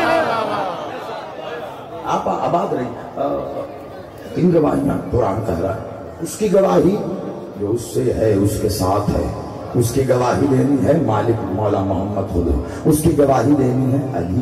آپ آباد رہی، ان گواہیاں قرآن کہہ رہا ہے، اس کی گواہی جو اس سے ہے اس کے ساتھ ہے، اس کی گواہی دینی ہے مالک مولا محمد خود، اس کی گواہی دینی ہے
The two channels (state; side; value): identical; both; correlation 1.00